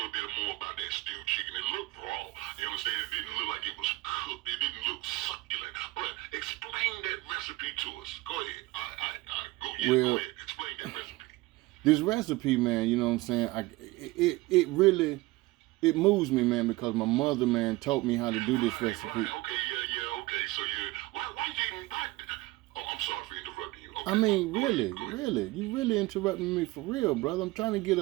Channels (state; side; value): quieter; left; 20.4 dB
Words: bit more about that stewed chicken. It looked raw. You understand? It didn't look like it was cooked. It didn't look succulent. But explain that recipe to us. Go ahead. Go ahead. Explain that recipe. This recipe, man, you know what I'm saying? It really moves me, man, because my mother, man, taught me how to do this recipe. Right. Okay. So I'm sorry for interrupting you. Okay. I mean, really, you really interrupting me for real, brother. I'm trying to get